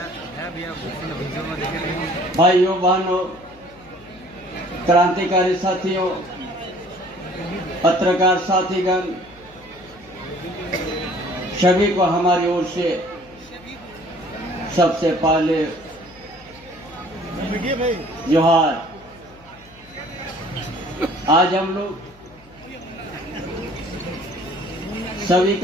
भाइयों बहनों, क्रांतिकारी साथियों, पत्रकार साथीगण, सभी को हमारी ओर से सबसे पहले जोहार। आज हम लोग सभी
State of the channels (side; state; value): left; noise; hum, 26 dB below the sound